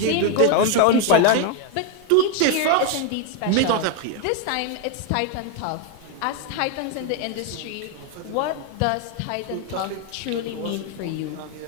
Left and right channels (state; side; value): different; both; correlation 0.01